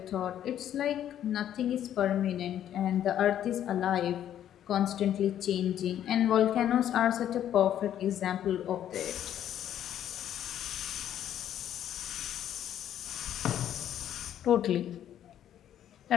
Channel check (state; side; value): quieter; right; 10.7 dB